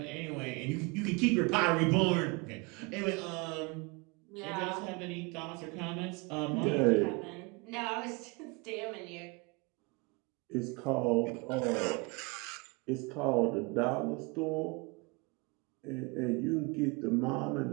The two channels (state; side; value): quieter; left; 28.1 dB